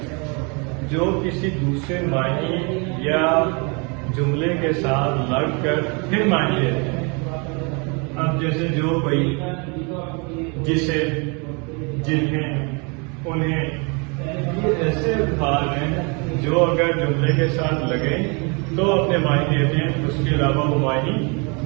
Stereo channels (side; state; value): left; quieter; 32.4 dB